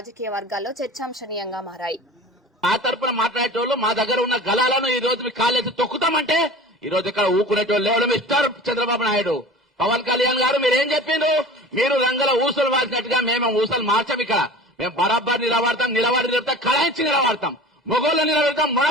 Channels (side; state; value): both; normal; correlation 0.38